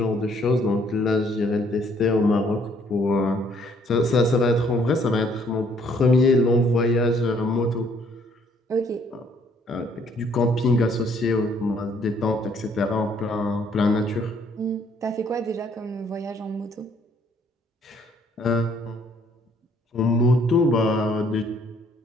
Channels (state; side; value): normal; both; correlation 0.64